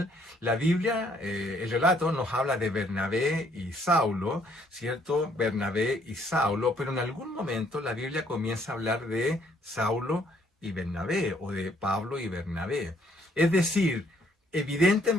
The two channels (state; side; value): normal; both; correlation 0.66